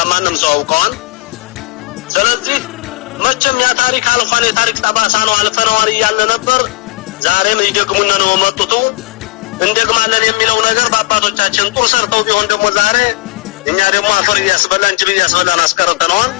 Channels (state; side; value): quieter; right; 20.5 dB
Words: ማንም ሰው ያውቀዋል። ስለዚህ መቼም ያ ታሪክ አልፏል፣ የታሪክ ጠባሳ ነው፣ አልፈነዋል እያለ ነበር። ዛሬም ይደግሙና ነው መጥቶ እንደግማለን የሚለው ነገር በአባቶቻችን ጦር ሰርተው ቢሆን ደግሞ ዛሬ እኛ ደግሞ አፈር እያስበላን ጅብ እያስበላን አስቀርተነዋል።